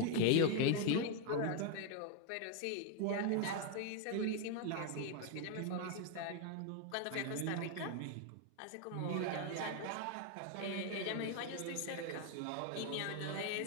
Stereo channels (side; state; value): both; different; correlation 0.00